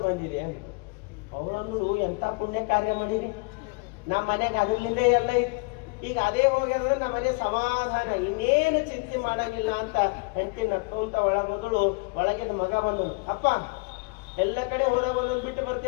ಬಂದಿರಿ ಅಂತ. ಅವನು, ಎಂತ ಪುಣ್ಯ ಕಾರ್ಯ ಮಾಡಿರಿ, ನಮ್ಮ ಮನೆಗೆ ಅದ್ರಲಿಂದ ಎಲ್ಲ ಇತ್ತು, ಈಗ ಅದೇ ಹೋಗ್ಯಾದ್ರೆ ನಮ್ಮ ಮನೆ ಸಮಾಧಾನ, ಇನ್ನೇನು ಚಿಂತೆ ಮಾಡಂಗಿಲ್ಲ ಅಂತ ಹೆಂಡತಿ ನಕ್ಕೊಂತ ಮೊದಲು ಒಳಗಿನ ಮಗ ಬಂದನು. ಅಪ್ಪ, ಎಲ್ಲ ಕಡೆ ಹೋದಾಗ ಒಂದೊಂದು ಬಿಟ್ಟು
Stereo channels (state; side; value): quieter; right; 29.8 dB